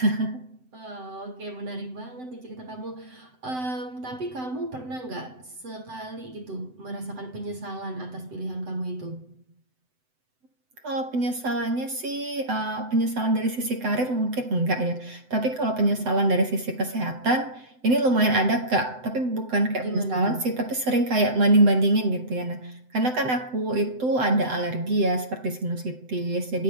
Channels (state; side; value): late; left; 7.9 ms